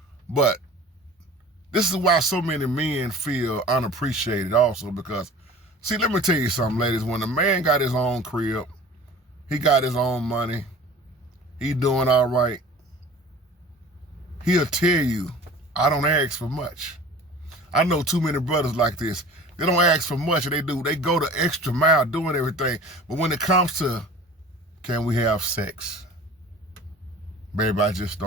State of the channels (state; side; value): normal; both; correlation 0.42